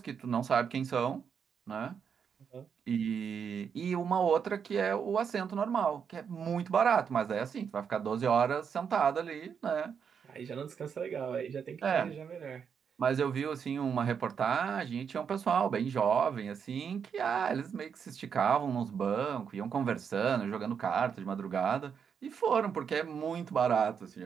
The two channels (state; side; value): quieter; left; 7.0 dB